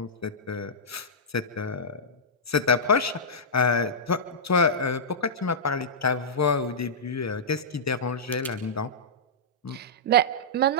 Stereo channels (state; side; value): normal; both; correlation -0.14